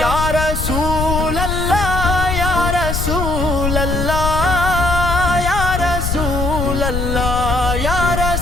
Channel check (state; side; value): noise; left; rumble, 2 dB below the sound